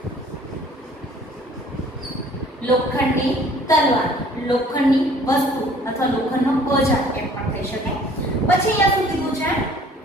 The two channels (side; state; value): both; normal; correlation 0.54